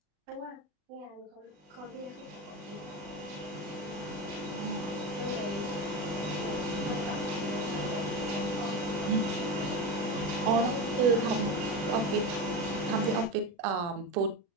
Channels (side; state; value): left; late; 40 ms